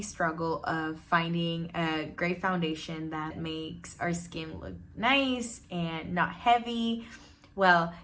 struggle of finding a great foundation that makes our skin look nice and not heavy. Well,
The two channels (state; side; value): identical; both; correlation 1.00